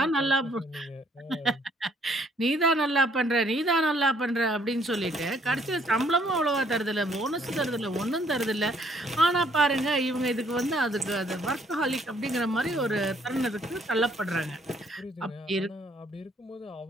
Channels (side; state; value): both; normal; correlation 0.65